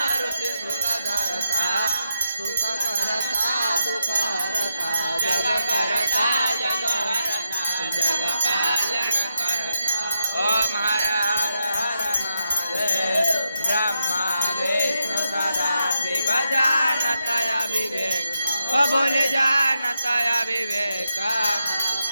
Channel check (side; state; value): both; inverted; correlation -0.84